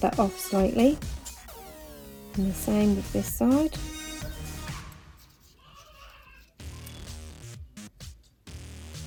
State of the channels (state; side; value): identical; both; correlation 1.00